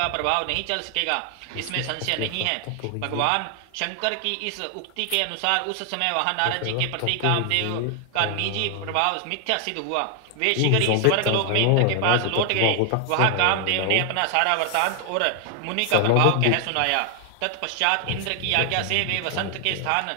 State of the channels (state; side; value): different; both; correlation 0.00